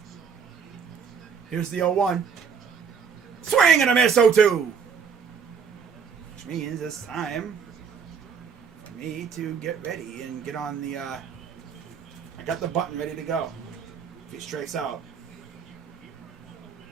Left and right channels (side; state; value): left; quieter; 6.4 dB